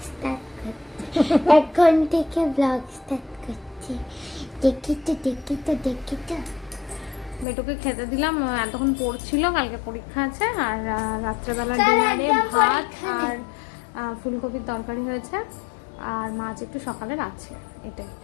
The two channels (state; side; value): drops out; right; at 7.5 s